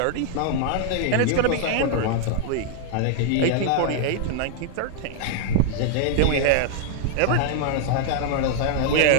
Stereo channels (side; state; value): both; different; correlation -0.01